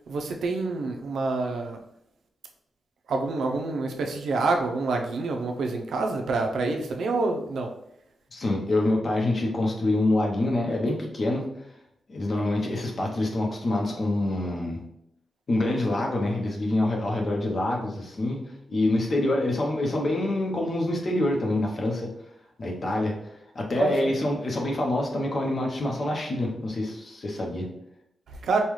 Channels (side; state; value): both; normal; correlation 0.86